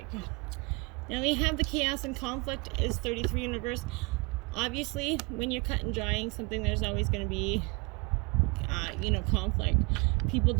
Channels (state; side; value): quieter; left; 28.2 dB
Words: Now we have the chaos and conflict is 33 in reverse. Obviously, when you're cut and drying something, there's always going to be, you know, conflict. People